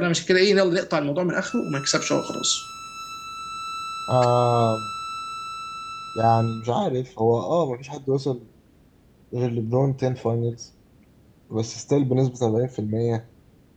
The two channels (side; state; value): both; identical; correlation 1.00